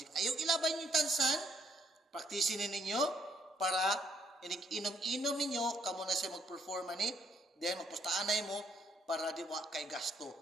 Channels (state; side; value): normal; both; correlation 0.69